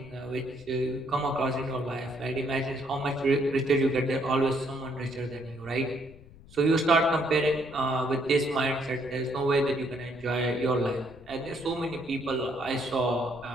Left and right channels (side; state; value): left; noise; rumble, 21 dB below the sound